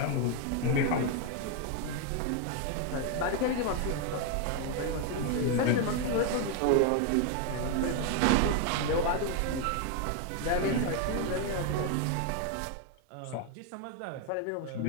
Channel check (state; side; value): different; both; correlation 0.01